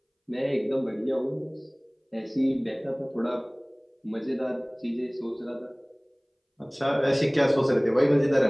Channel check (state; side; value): identical; both; correlation 1.00